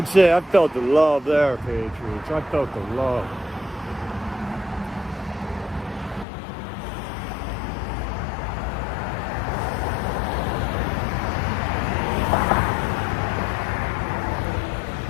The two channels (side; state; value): right; drops out; at 6.2 s